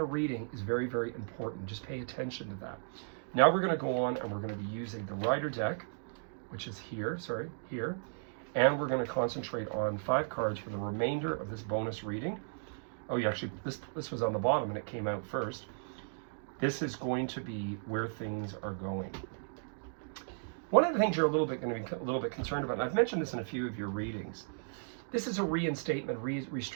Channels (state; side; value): silent; left; digital silence